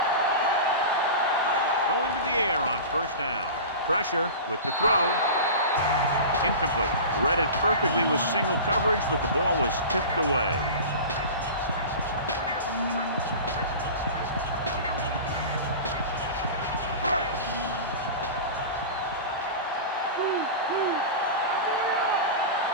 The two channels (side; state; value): both; inverted; correlation -0.31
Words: Going to the air on 1st down. Pressure with the throw. Incomplete. Read it perfectly with single coverage, but the ball was tipped away.